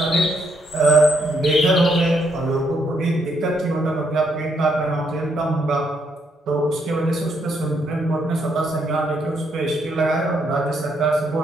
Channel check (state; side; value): normal; both; correlation 0.74